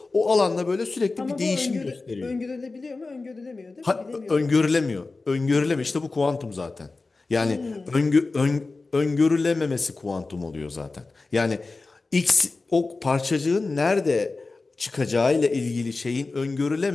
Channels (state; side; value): quieter; right; 3.7 dB